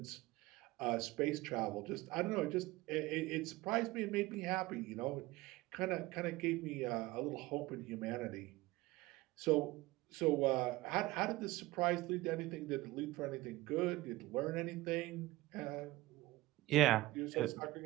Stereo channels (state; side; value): quieter; left; 19.0 dB